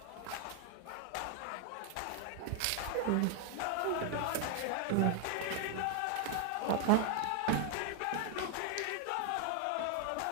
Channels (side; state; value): both; different; correlation 0.00